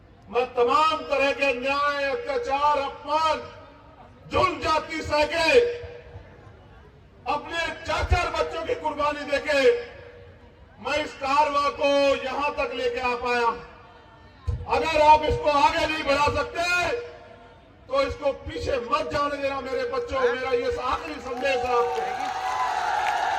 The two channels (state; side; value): identical; both; correlation 1.00